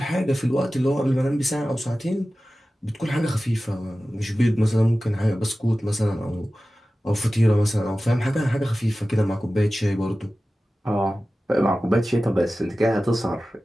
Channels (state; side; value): normal; both; correlation 0.95